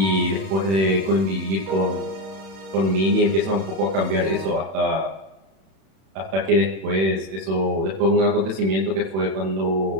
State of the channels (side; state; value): left; late; 31 ms